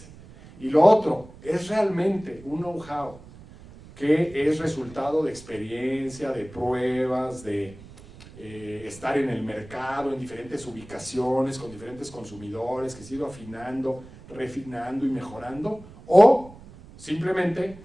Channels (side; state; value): right; noise; rumble, 19 dB below the sound